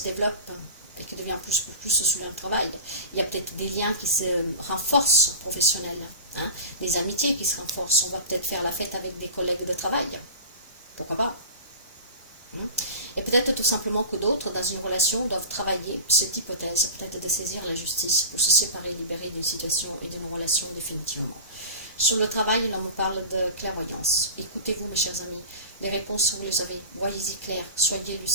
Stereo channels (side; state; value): both; inverted; correlation -0.33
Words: développe et qui devient plus sur le travail. Il y a peut-être des liens qui se renforcent professionnels. Des amitiés qui se renforcent. On va peut-être faire la fête avec des collègues de travail. Pourquoi pas? Et peut-être tout simplement que d'autres, dans une relation, doivent travailler cette hypothèse, peut-être de saisir la justice pour se séparer, libérer d'une situation et d'une relation définitivement. Sur le travail, l'on me parle de clairvoyance. Écoutez-vous, mes chers amis, les réponses, vous les avez. Voyez-y clair, soyez